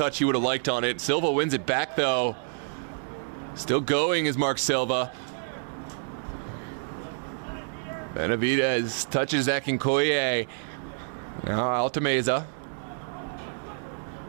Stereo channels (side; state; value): left; silent; digital silence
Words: he would have liked on it. Silva wins it back, though. Still going is Mark Silva. Benavidez touches Akinkoye. Now Altameza.